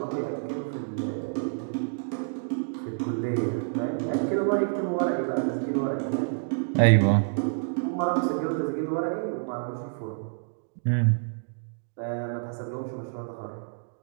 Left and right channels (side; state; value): left; silent; digital silence